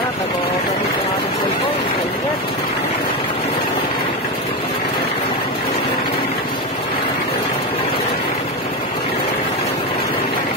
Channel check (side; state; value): both; normal; correlation 0.14